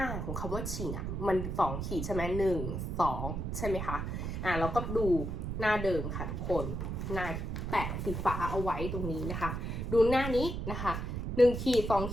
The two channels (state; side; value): noise; right; rumble, 3 dB below the sound